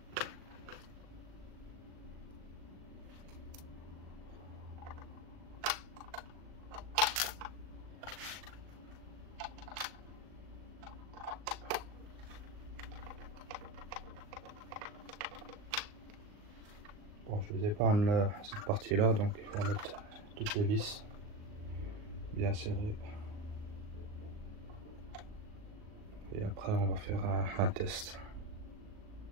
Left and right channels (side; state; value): left; late; 38 ms